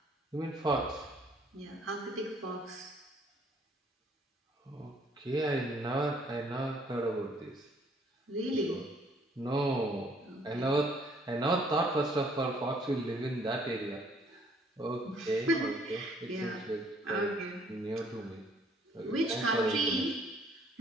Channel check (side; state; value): both; normal; correlation 0.62